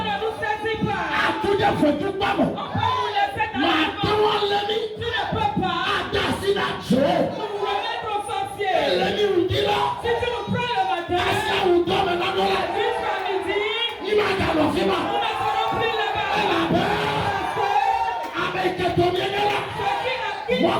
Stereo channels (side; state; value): both; identical; correlation 1.00